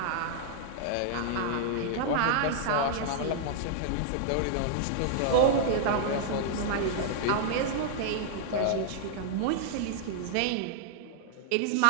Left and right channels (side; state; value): both; different; correlation -0.01